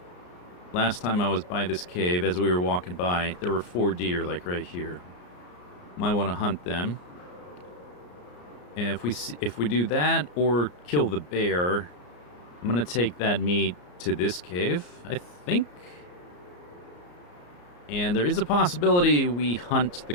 Last time I was by this cave, as we were walking by, there were 4 deer, like right here. Might want to hunt them. And if we do that or kill the bear, I'm gonna take that meat to this cave, I think. And there is a possibility we hunt the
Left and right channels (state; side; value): late; right; 34 ms